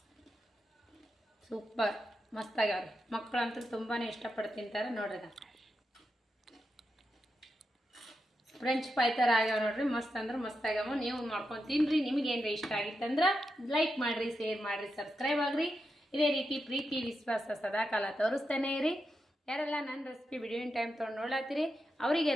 ಸೂಪರ್ ಮಸ್ತ್ ಆಗ್ಯಾವ್ರಿ. ಮಕ್ಕಳಂತೂ ತುಂಬಾ ಇಷ್ಟಪಟ್ಟು ತಿಂತಾರೆ ನೋಡ್ರಿ. ಫ್ರೆಂಚ್ ಫ್ರೈ ಥರ ಆಗ್ಯಾವ ನೋಡ್ರಿ, ಮಸ್ತ್ ಅಂದ್ರೆ ಮಸ್ತ್ ಆಗ್ಯಾವ. ನೀವು ಮಾಡ್ಕೊಂಡು ತಿನ್ನಿರಿ. ನಿಮಗೇನ್ರಿ ಇಷ್ಟ ಆಗಿತ್ತಂದ್ರೆ ಲೈಕ್ ಮಾಡಿರಿ, ಶೇರ್ ಮಾಡಿರಿ, ಸಬ್ಸ್ಕ್ರೈಬ್ ಆಗಿರಿ. ಇದೇ ರೀತಿ ಪ್ರೀತಿ ವಿಶ್ವಾಸ ಸದಾ ಕಾಲ ತೋರಿಸ್ತಾನೆ ಇರಿ. ಯಾರೆಲ್ಲ ನನ್ನ ರೆಸಿಪಿ ವಿಡಿಯೋನ್ ಟೈಮ್ ತೊಗೊಂಡು ನೋಡ್ಲಾತ್ತೀರಿ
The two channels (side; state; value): both; normal; correlation 0.87